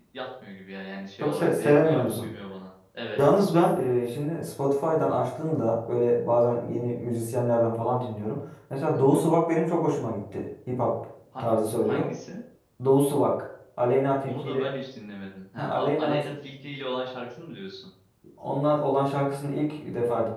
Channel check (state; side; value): identical; both; correlation 1.00